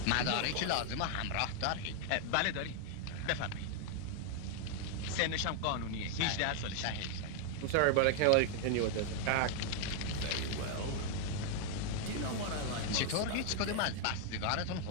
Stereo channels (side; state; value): both; different; correlation 0.00